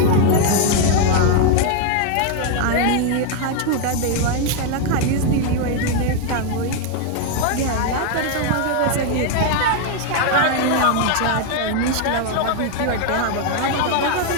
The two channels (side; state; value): both; different; correlation 0.01